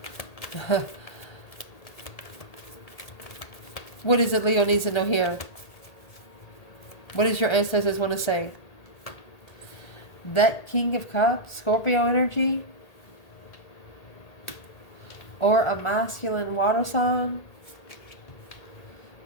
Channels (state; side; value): late; right; 1.8 ms